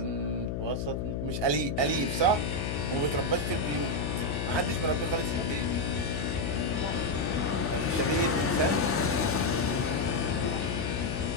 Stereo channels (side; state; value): left; noise; hum, 2 dB below the sound